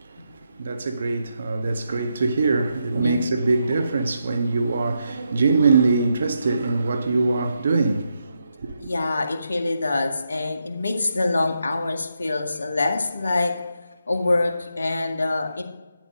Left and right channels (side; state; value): both; inverted; correlation -0.83